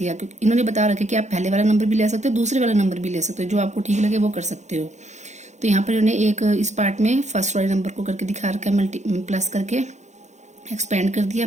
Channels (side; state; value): left; late; 0.34 ms